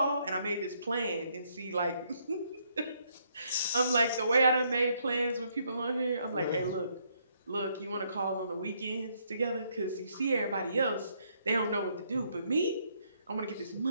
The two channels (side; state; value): both; inverted; correlation -0.71